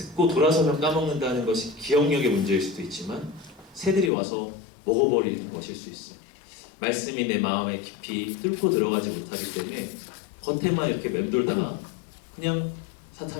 돌아서면 까먹는다는 것이 기억력의 문제일 수도 있지만 새들이 와서 먹어버리는 것일 수 있어요. 말씀이 내 마음에 깊이 뚫고 들어가지 못하기 때문에 겉에만 이렇게 맴돌다가 그냥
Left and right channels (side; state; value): right; drops out; at 4.1 s